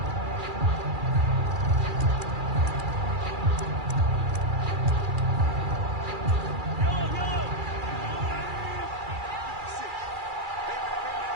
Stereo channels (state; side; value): late; left; 2.4 ms